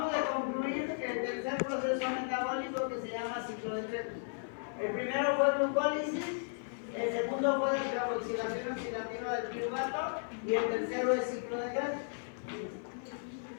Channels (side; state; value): right; silent; 54 dB below the other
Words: de concluir el tercer proceso metabólico que se llama ciclo de Krebs. El primero fue glucólisis, el segundo fue descarboxilación oxidativa del piruvato y el tercero es ciclo de Krebs.